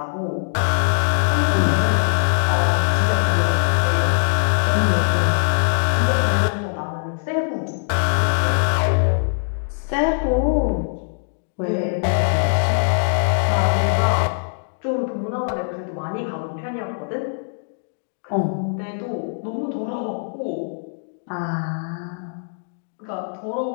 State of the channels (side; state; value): right; silent; digital silence